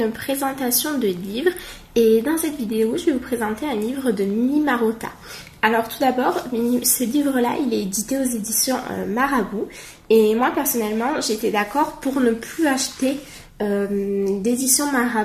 présentation de livres, et dans cette vidéo je vais vous présenter un livre de Mini Marotta. Alors tout d'abord, ce livre-là il est édité aux éditions Marabout, et moi personnellement j'étais d'accord pour ne plus acheter d'édition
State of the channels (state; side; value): identical; both; correlation 1.00